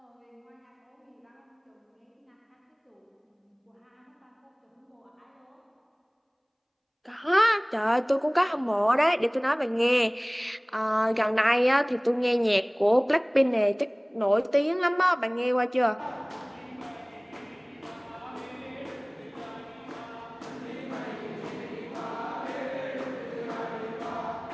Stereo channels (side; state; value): both; identical; correlation 1.00